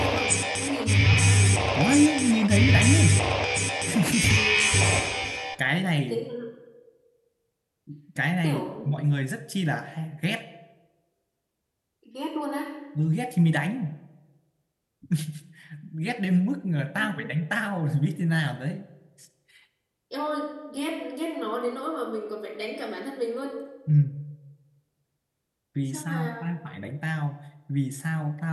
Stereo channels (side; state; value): both; identical; correlation 1.00